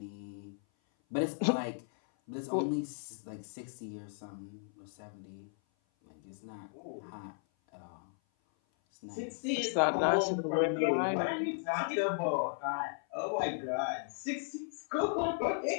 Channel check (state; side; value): silent; right; 54 dB below the other